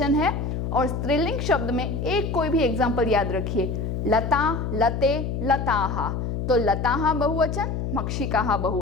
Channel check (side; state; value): left; noise; hum, 3 dB below the sound